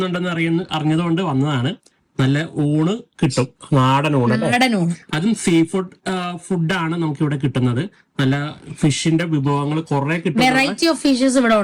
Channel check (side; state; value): both; identical; correlation 1.00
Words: അറിഞ്ഞതുകൊണ്ട് വന്നതാണ്. നല്ല ഊണ് കിട്ടും, നാടൻ ഊണ്. അതും സീ ഫുഡാണ് നമുക്ക് ഇവിടെ കിട്ടുന്നത്. നല്ല ഫിഷിന്റെ വിഭവങ്ങൾ കുറെ കിട്ടും, വെറൈറ്റി ഓഫ് ഫിഷസ് ഇവിടെ